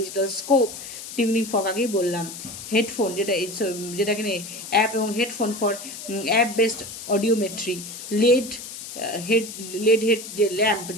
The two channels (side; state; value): left; noise; hiss, 11 dB below the sound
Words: scope, tuning fork আগেই বললাম। হেডফোন, যেটা এখানে অ্যাপ এবং headphone for app based audiometry, LED head যে ল্যাম্প,